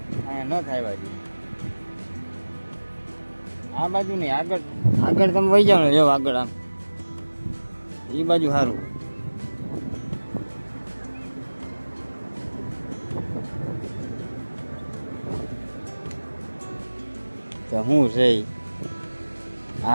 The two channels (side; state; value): both; inverted; correlation -1.00